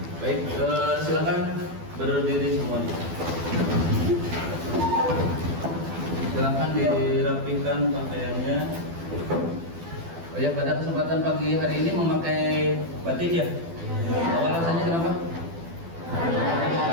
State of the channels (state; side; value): late; left; 12 ms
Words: Baik, silakan berdiri semuanya. Silakan dirapikan pakaiannya. Oh ya, pada kesempatan pagi hari ini memakai batik ya? Alasannya kenapa?